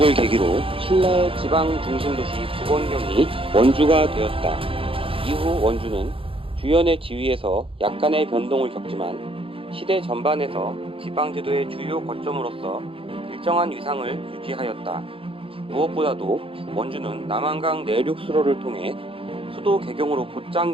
계기로 신라의 지방 중심도시 부건경이 원주가 되었다. 이후 원주는 주연의 지위에서 약간의 변동을 겪지만 시대 전반에서 지방제도의 주요 거점으로서 일정한 위상을 유지하였다. 무엇보다도 원주는 남한강 내륙 수로를 통해 수도 개경으로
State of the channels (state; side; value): late; left; 0.26 ms